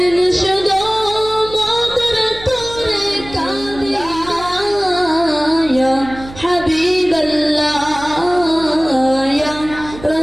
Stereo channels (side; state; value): right; noise; hum, 16 dB below the sound